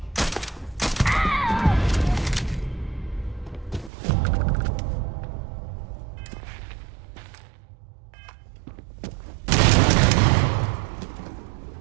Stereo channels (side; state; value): left; drops out; at 3.9 s